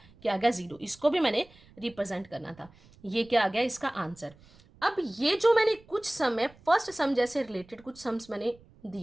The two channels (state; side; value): noise; right; rumble, 26 dB below the sound